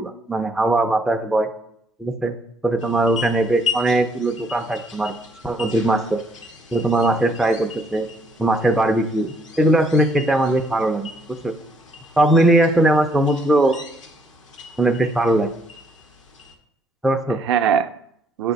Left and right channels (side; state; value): both; normal; correlation 0.68